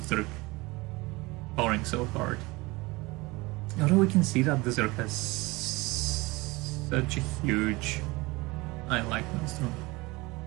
Zerg powering so hard. Although we can see that the Zerg has such a huge... I like Maelstrom.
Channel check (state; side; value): quieter; left; 23.1 dB